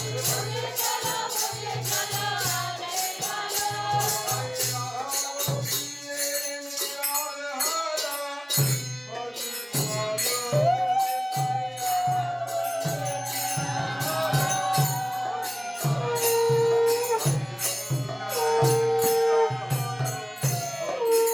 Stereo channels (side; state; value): both; identical; correlation 1.00